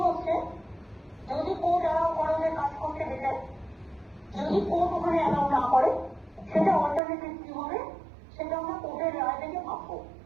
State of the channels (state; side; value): drops out; left; at 7.0 s